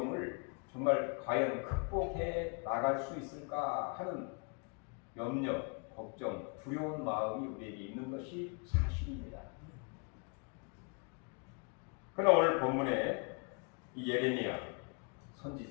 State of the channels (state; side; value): quieter; right; 38.0 dB